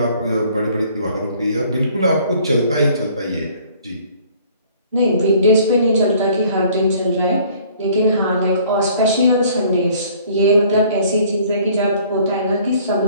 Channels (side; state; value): both; inverted; correlation -0.56